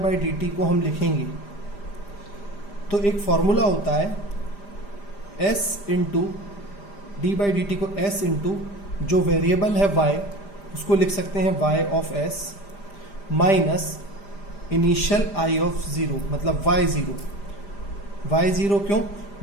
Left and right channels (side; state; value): right; late; 5.0 ms